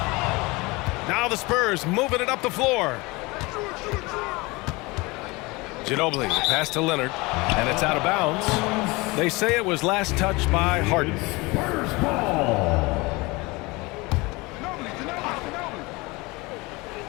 Now the Spurs moving it up the floor. Ginobili, the pass to Leonard, and it's out of bounds. They say it was last touched by Harden.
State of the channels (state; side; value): quieter; right; 24.0 dB